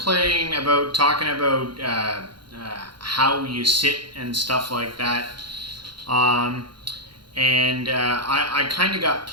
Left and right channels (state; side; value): late; left; 0.73 ms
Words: about talking about how you sit and stuff like that. Um, and I kind of got